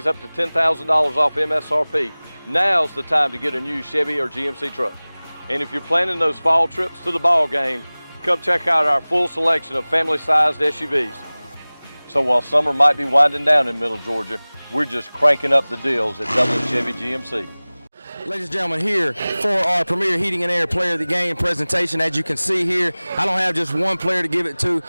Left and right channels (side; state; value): both; inverted; correlation -1.00